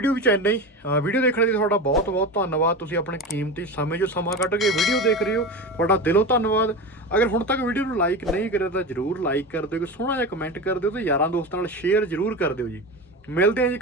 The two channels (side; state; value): both; normal; correlation 0.25